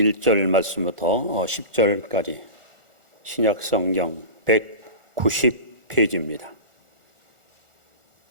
말씀부터 10절까지 신약 성경 190페이지입니다.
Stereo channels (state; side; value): late; left; 1.4 ms